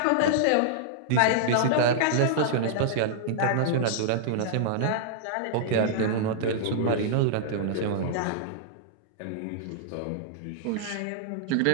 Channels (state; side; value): different; both; correlation -0.01